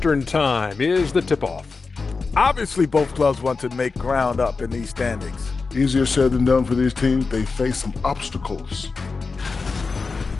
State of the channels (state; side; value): quieter; right; 4.4 dB